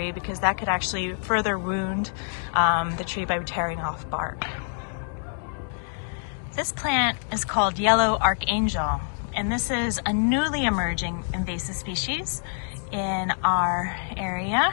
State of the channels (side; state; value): right; silent; digital silence